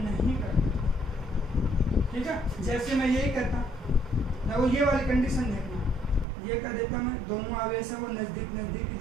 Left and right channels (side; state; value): left; drops out; at 6.2 s